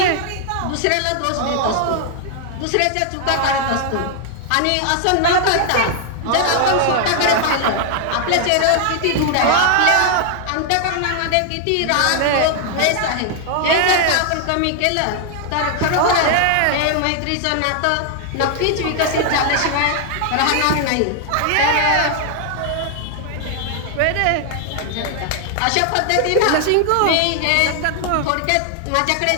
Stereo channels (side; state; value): both; different; correlation 0.00